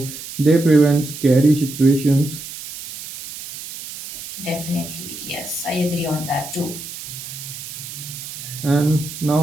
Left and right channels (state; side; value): noise; right; hiss, 11 dB below the sound